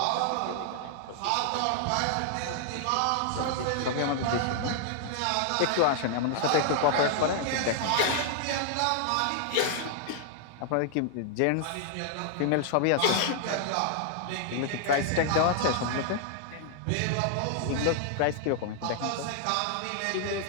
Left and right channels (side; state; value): both; different; correlation 0.00